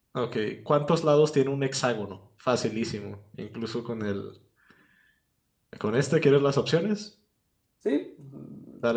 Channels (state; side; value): identical; both; correlation 1.00